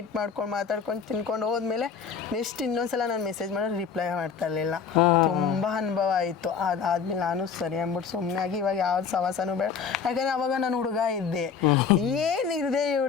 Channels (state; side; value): quieter; right; 6.4 dB